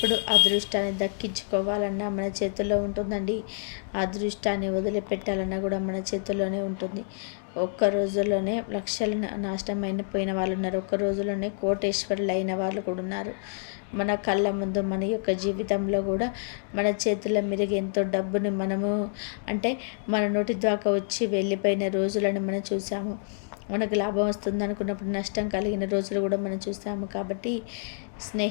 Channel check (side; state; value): right; silent; digital silence